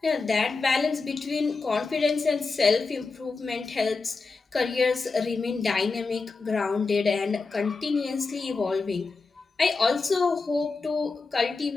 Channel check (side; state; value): right; quieter; 4.2 dB